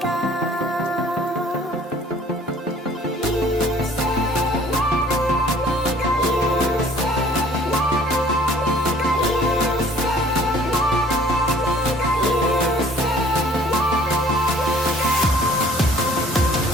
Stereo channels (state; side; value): normal; both; correlation 0.55